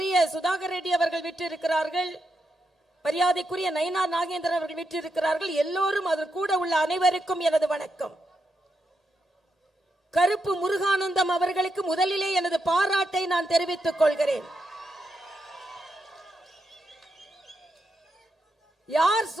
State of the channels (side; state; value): both; normal; correlation 0.83